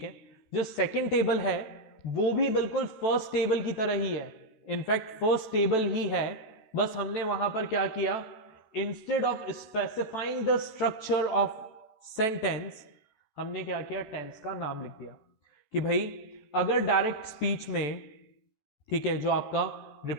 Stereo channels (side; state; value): right; late; 14 ms